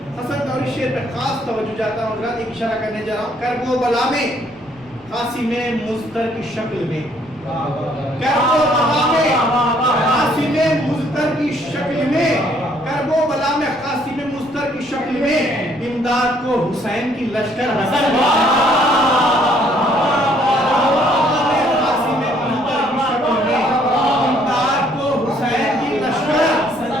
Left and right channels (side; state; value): right; noise; rumble, 29 dB below the sound